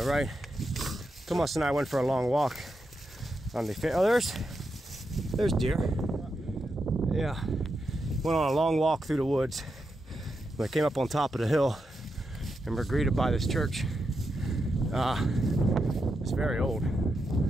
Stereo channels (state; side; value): normal; both; correlation 0.86